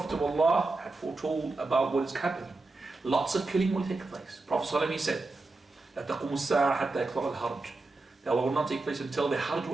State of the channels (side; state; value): left; quieter; 3.4 dB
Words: of Allah had foretold about what is happening. Lots of killing will take place. Prophet ﷺ said, لا تقوم الساعة حتى يكثر الحرج. That will not take place until the Hajj